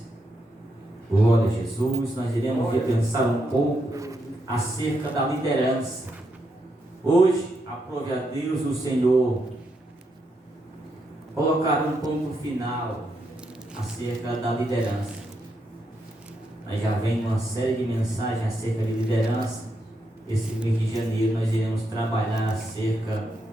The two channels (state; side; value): normal; both; correlation 0.81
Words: Glória a Jesus. Nós iremos repensar um pouco acerca da liderança. Hoje, aprove a Deus o Senhor colocar um ponto final acerca da liderança. Nós já vem uma série de mensagens acerca de liderança. Esse mês de janeiro nós iremos trabalhar acerca